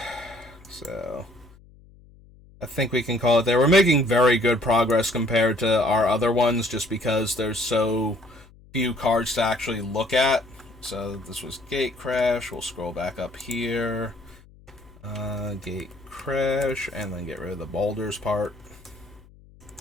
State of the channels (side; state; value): left; noise; hum, 25 dB below the sound